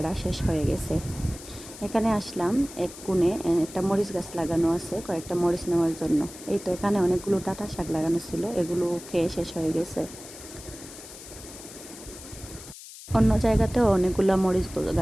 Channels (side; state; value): left; noise; hiss, 15 dB below the sound